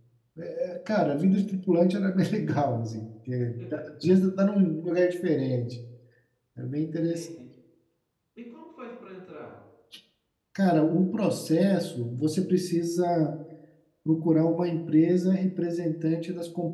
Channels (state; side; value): identical; both; correlation 1.00